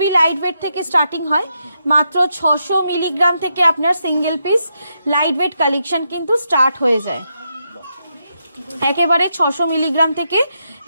লাইট ওয়েট থেকে স্টার্টিং হয়, মাত্র 600 মিলিগ্রাম থেকে আপনার single piece light weight collection কিন্তু স্টার্ট হয়ে যায়। একেবারে 600 মিলিগ্রাম থেকে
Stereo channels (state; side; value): inverted; both; correlation -0.83